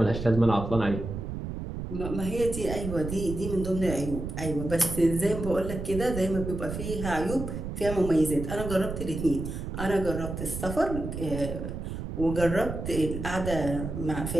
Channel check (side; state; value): right; noise; rumble, 6 dB below the sound